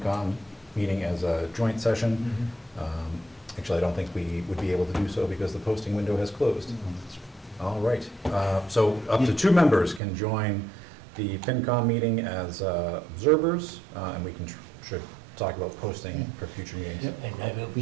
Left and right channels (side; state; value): left; drops out; at 10.0 s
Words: meeting as a joint session. Mm-hmm. Actually, I don't think we would be able to do so because the posting window has closed. All right, so up to 2 members can join the FinCom meeting as observers, and we can should talk about posting for future meetings. Yep. And we